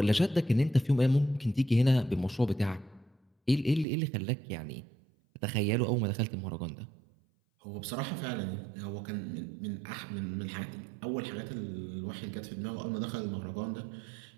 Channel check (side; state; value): left; drops out; at 3.9 s